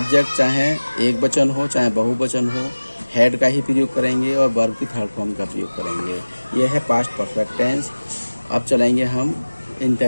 चाहे एक वचन हो चाहे बहुवचन हो, हैड का ही प्रयोग करेंगे और वर्ब की थर्ड फॉर्म का प्रयोग करेंगे। यह है पास्ट परफेक्ट टेंस। अब चलेंगे हम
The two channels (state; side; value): inverted; both; correlation -1.00